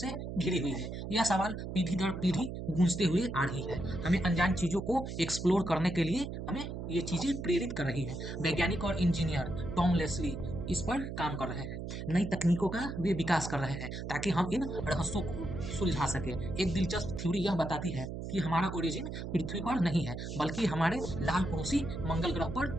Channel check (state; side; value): noise; right; hum, 6 dB below the sound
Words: घिरी हुई है। यह सवाल पीढ़ी दर पीढ़ी गूंजते हुए आ रही है, हमें अनजान चीजों को एक्सप्लोर करने के लिए हमें ये चीजें प्रेरित कर रही हैं। वैज्ञानिक और इंजीनियर टॉम लेस्ली इस पर काम कर रहे हैं, नई तकनीकों का वे विकास कर रहे हैं ताकि हम इन रहस्यों को सुलझा सके। एक दिलचस्प थ्योरी यह बताती है कि हमारा ओरिजिन पृथ्वी पर नहीं है, बल्कि हमारे लाल पड़ोसी मंगल ग्रह पर